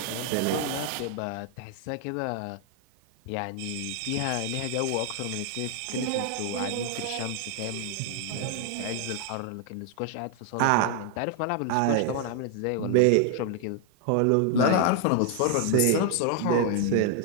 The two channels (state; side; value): different; both; correlation 0.00